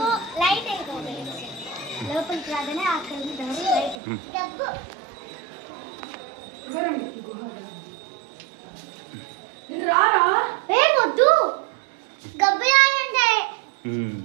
లైట్ అయిపోతుంది లోపలికి రాగానే అక్కడ లైట్ డబ్బు రారా ఏ వద్దు గబ్బయాలంటే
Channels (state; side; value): drops out; left; at 4.0 s